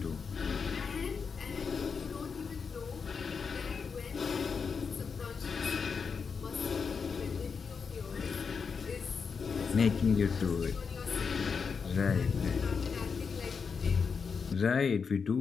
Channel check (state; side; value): quieter; right; 5.7 dB